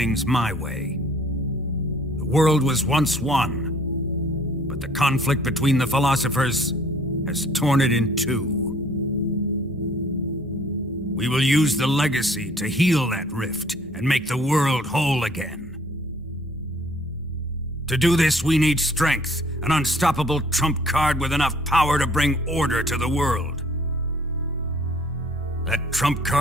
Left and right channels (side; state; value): both; normal; correlation 0.57